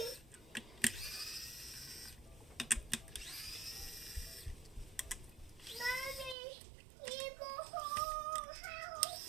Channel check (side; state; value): left; drops out; at 6.4 s